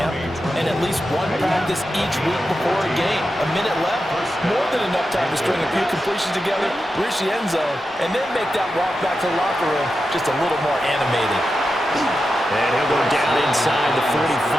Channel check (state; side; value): normal; both; correlation 0.90